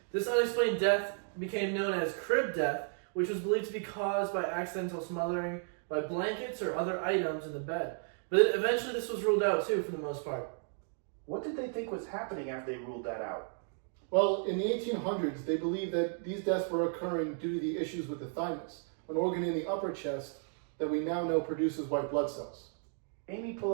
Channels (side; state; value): left; silent; 55 dB below the other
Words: This unexplained death became known as crib death, which was believed to be caused by accidental smothering by blankets or other items in the bed. But eventually this was ruled out too, for the most part. What did they think was happening after they ruled that out? Well, in the 1800s, they believed that these deaths were occurring due to the issues with the thymus, an organ in the upper chest that we now know produces white blood cells. Amy, pull